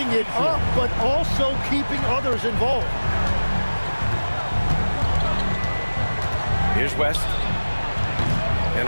it up, but also keeping others involved. Here's West.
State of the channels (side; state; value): both; inverted; correlation -1.00